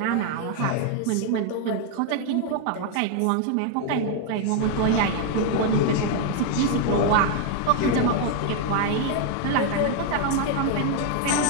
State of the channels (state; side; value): different; both; correlation 0.00